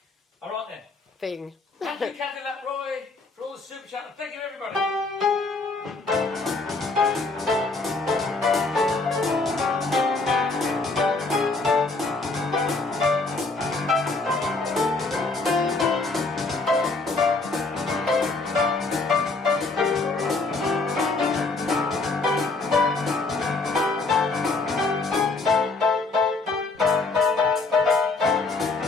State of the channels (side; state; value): right; quieter; 3.6 dB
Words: All right, then. thing. Thank you, Cadillac Roy, for all the super chat. And thank you, everybody.